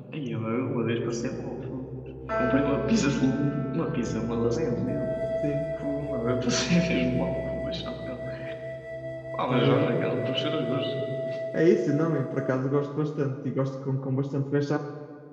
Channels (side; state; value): both; identical; correlation 1.00